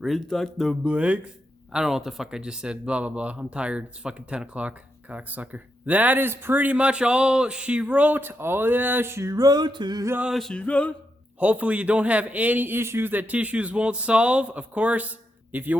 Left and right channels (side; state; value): both; normal; correlation 0.84